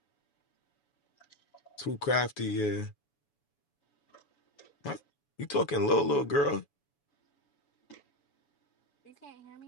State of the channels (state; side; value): late; right; 7.0 ms